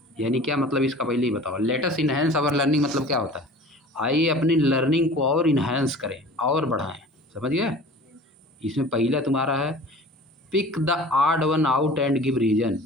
यानी क्या मतलब इसका पहले ही बताओ। लेटस इन्हेंस आवर लर्निंग मतलब क्या होता है? आइए अपनी लर्निंग को और इन्हेंस करें और बढ़ाएं। समझ गए? इसमें पहला तुम्हारा है pick the odd one out and give reason.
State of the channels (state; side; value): normal; both; correlation 0.42